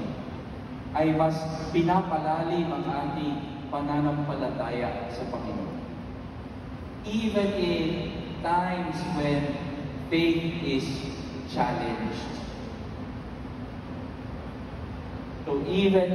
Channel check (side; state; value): both; identical; correlation 1.00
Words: ay mas pinapalalim ang ating pananampalataya sa Panginoon. Even in times when faith is challenged. So even